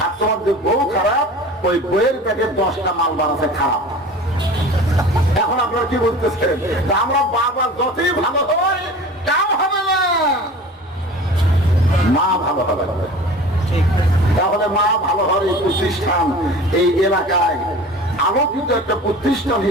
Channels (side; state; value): both; normal; correlation 0.40